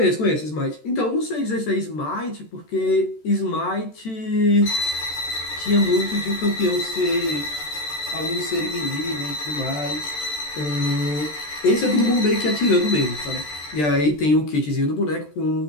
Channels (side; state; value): right; late; 13 ms